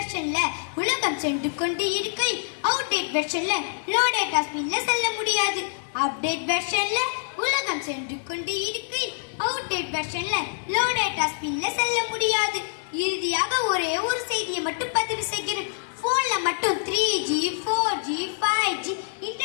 உலகம் சென்று கொண்டு இருக்கையில் அவுடேட் வெர்ஷன்ல லோ டேட்டா ஸ்பீட்ல செல்ல முடியாது. அப்டேட் வெர்ஷன்ல உலகம் சென்று கொண்டு இருக்கையில் அவுடேட் வெர்ஷன்ல லோ டேட்டா ஸ்பீட்ல செல்ல முடியாது. இறுதியாக ஒரே ஒரு செய்தியை மட்டும் பதிவு செய்கிறேன். போன்ல மட்டும் 3G, 4G, 5G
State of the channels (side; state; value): right; silent; digital silence